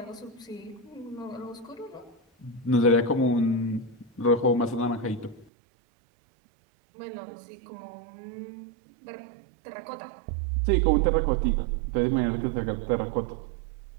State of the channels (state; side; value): drops out; left; at 5.5 s